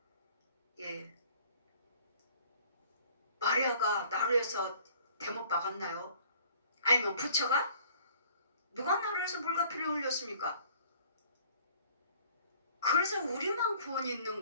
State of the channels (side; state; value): both; inverted; correlation -0.55